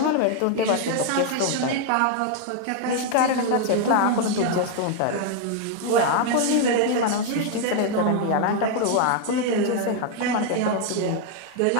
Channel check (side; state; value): both; different; correlation 0.00